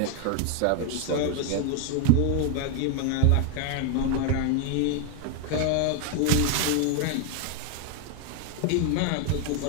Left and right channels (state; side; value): different; both; correlation 0.01